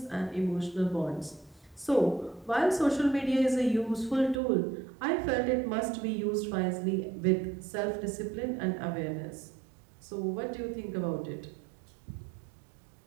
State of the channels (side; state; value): left; drops out; at 4.4 s